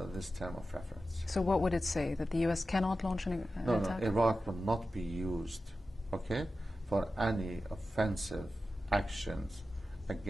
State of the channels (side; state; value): both; normal; correlation 0.93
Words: this term of reference. So what would it say? That the U.S. cannot launch an attack? No, Iraq will not be used, okay, for any offensive actions